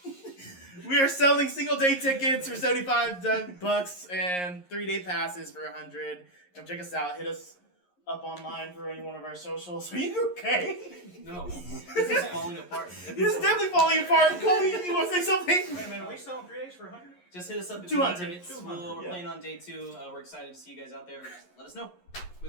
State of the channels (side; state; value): right; late; 11 ms